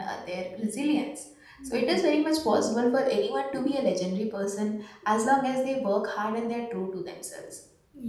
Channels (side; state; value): both; identical; correlation 1.00